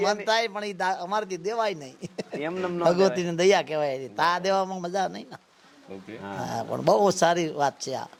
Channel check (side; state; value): both; identical; correlation 1.00